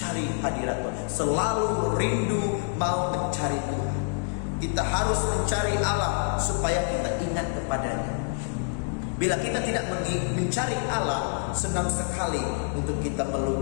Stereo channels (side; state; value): right; silent; digital silence